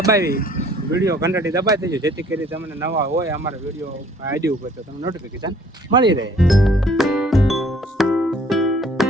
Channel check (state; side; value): normal; both; correlation 0.57